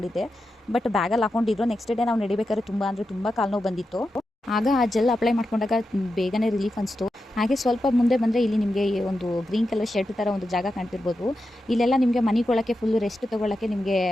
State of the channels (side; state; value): both; normal; correlation 0.89